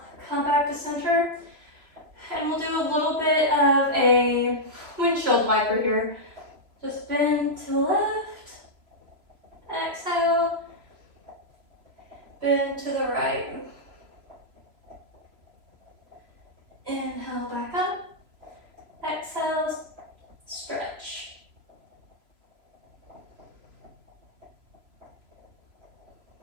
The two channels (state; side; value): late; left; 3.0 ms